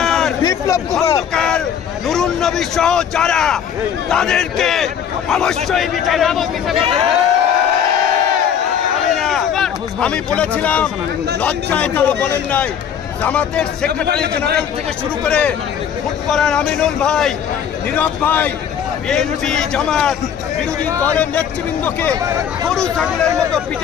বিপ্লব খন্দকার, নুরুন নবী সহ যারা, তাদেরকে অবশ্যই বিচার। আমি বলেছিলাম লজ্জায় তারা বলেন নাই। জামাতের সেক্রেটারি জেনারেল থেকে শুরু করে ফুটবলার আমিনুল ভাই, নীরব ভাই, বিএনপি জামাত বিরোধী দলের নেতৃবৃন্দকে গরু ছাগলের মতো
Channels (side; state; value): right; quieter; 8.4 dB